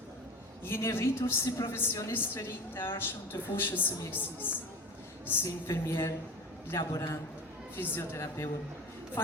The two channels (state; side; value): normal; both; correlation 0.33